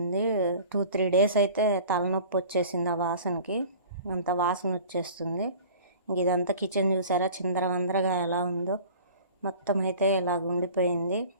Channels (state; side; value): inverted; both; correlation -0.44